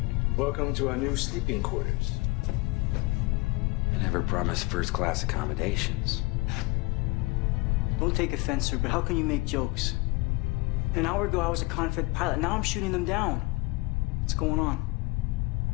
Welcome to our new sleeping quarters. I never promised first-class accommodations. Don't take offense, sir, but how can you make jokes? An hour ago, I was a Confed pilot. Now I'm shooting them down. What's going on?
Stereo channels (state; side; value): quieter; right; 24.5 dB